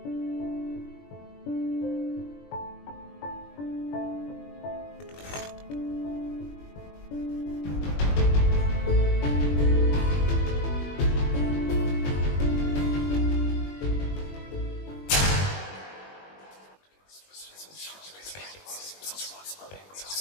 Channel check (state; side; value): late; right; 21 ms